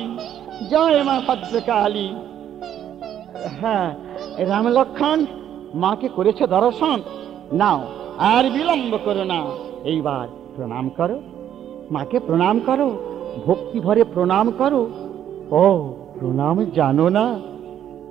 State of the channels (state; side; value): quieter; left; 10.3 dB